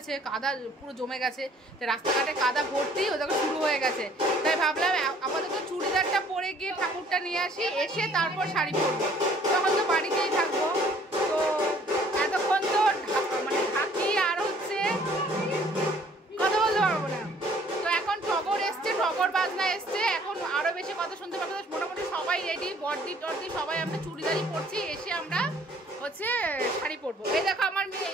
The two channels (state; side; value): normal; both; correlation 0.58